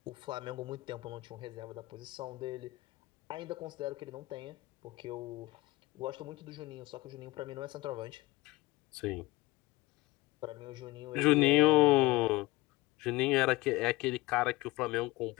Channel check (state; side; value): quieter; right; 21.0 dB